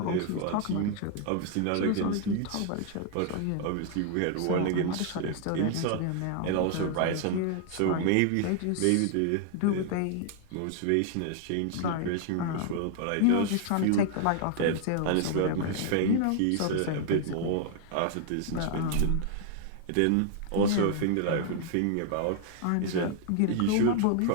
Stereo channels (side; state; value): both; different; correlation 0.00